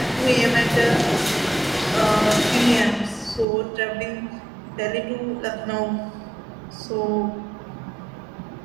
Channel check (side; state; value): left; drops out; at 3.5 s